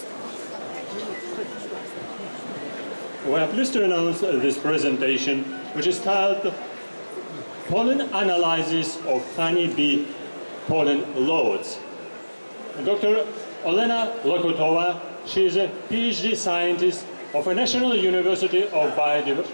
We are pleased to announce this presentation, which is titled Pollen Analysis of Honeybee Pollen Loads. Dr. Елена Локутова, she is a PhD scientist of a National University of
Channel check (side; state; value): both; inverted; correlation -1.00